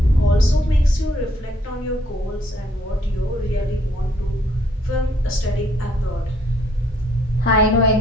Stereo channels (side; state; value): both; normal; correlation 0.67